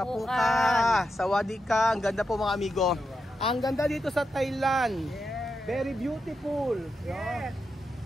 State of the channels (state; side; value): normal; both; correlation 0.87